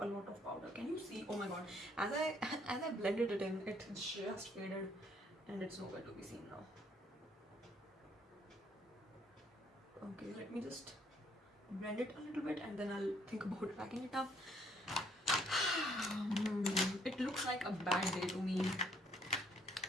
a lot of powder. Can you see? Oh my god! As I blended it in, it just faded, and it's nowhere to be seen now. Okay, let me just blend it a little bit, and then I'll think about packing it up. It looks like a bad day to me,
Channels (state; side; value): normal; both; correlation 0.66